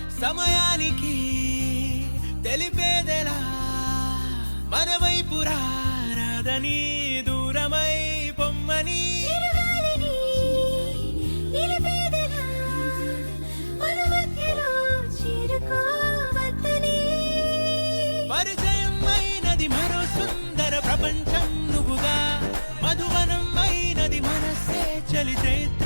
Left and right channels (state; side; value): inverted; both; correlation -1.00